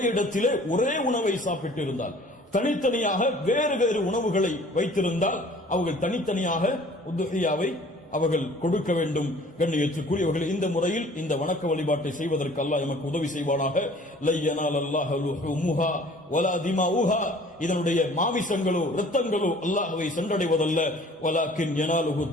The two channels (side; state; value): both; normal; correlation 0.51